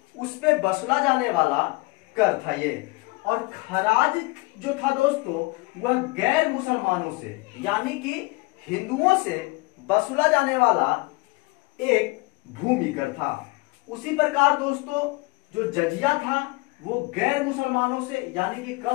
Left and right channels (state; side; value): quieter; right; 25.0 dB